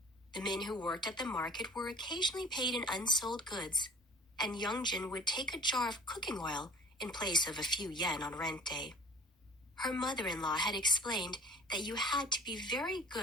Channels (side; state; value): both; normal; correlation 0.46